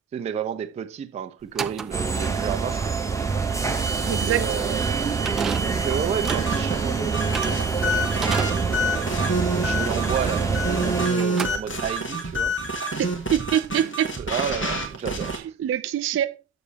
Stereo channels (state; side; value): quieter; left; 4.4 dB